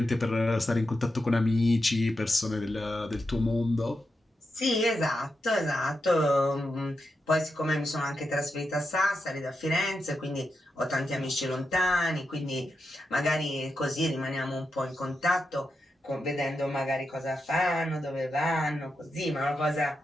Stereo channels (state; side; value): normal; both; correlation 0.87